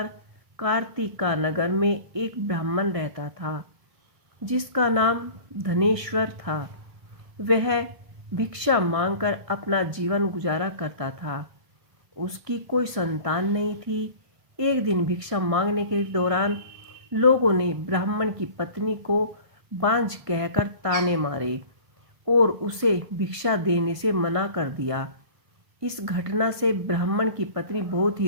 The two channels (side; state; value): left; late; 1.5 ms